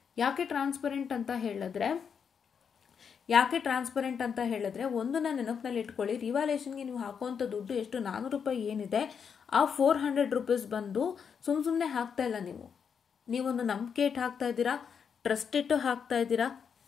ಯಾಕೆ ಟ್ರಾನ್ಸ್ಪರೆಂಟ್ ಅಂತ ಹೇಳಿದ್ರೆ ಒಂದು ನಾನು ನೆನಪಿನಲ್ಲಿ ಇಟ್ಕೊಳ್ಳಿ, ರಿವ್ಯಾಲ್ಯೂಯೇಷನ್ಗೆ ನೀವು ಹಾಕುವಂಥ ದುಡ್ಡು ಎಷ್ಟು, 400 ರೂಪಾಯಿ ಏನಿದೆ, ಆ 400 ರೂಪೀಸ್ ಬಂದು ಸುಮ್ಮನೆ ಹಾಕ್ತಾ ಇಲ್ಲ. ನೀವೊಂದು ನಂಬಿಕೆ ಇಟ್ಟು ಹಾಕ್ತಾ ಇದ್ದೀರಾ, ಟ್ರಸ್ಟ್ ಇಟ್ಟು ಹಾಕ್ತಾ ಇದ್ದೀರಾ,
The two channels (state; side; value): quieter; right; 6.8 dB